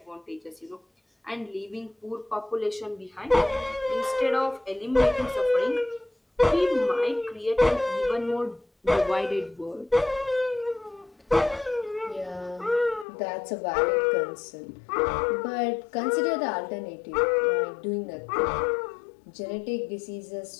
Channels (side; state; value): right; drops out; at 13.1 s